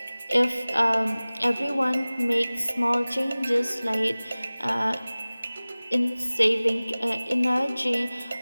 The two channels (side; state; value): both; inverted; correlation -0.99